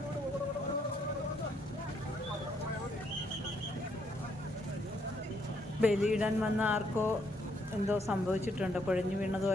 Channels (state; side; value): normal; both; correlation 0.72